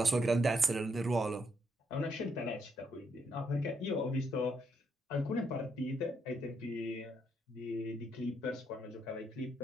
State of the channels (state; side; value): normal; both; correlation 0.75